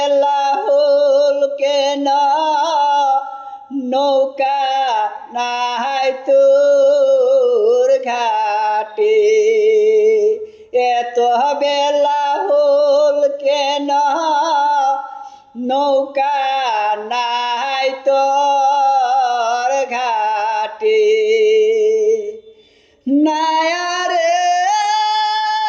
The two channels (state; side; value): identical; both; correlation 1.00